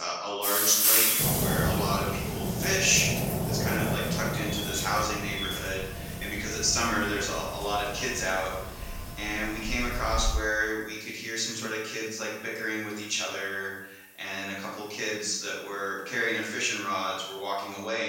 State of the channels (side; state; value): both; identical; correlation 1.00